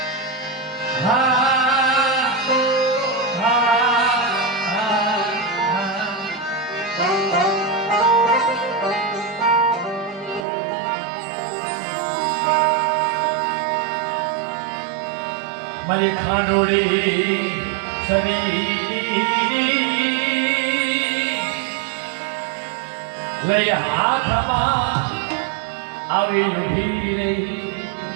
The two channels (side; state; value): left; drops out; at 10.5 s